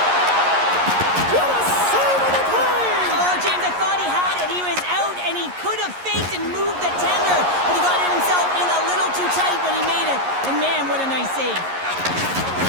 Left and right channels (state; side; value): late; left; 11 ms